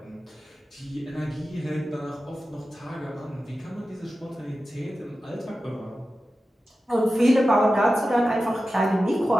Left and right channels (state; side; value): normal; both; correlation 0.93